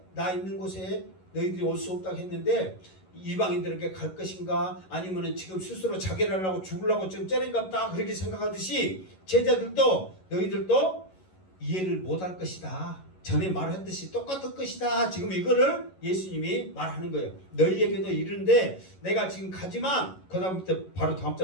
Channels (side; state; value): right; late; 11 ms